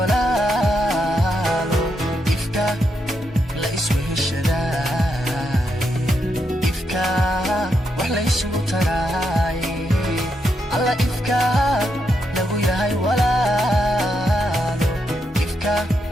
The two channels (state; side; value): normal; both; correlation 0.82